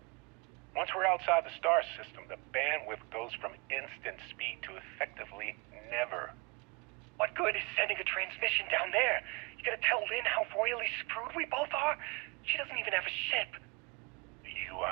Once we're outside the star system, the bandwidth goes from instant speed to effectively never. What good is sending a transmission down there? You gonna tell Lin how royally screwed we both are? She doesn't even have a ship. You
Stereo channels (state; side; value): quieter; left; 29.4 dB